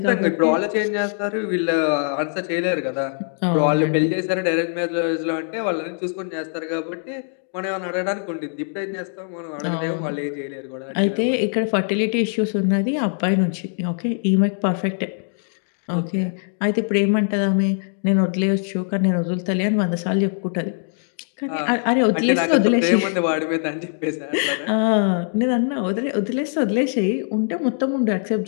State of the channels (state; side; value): silent; right; 64 dB below the other